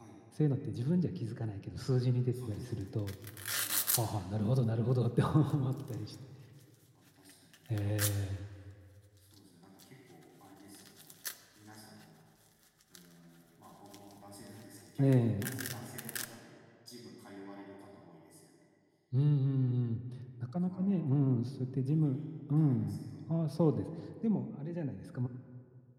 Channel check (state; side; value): identical; both; correlation 1.00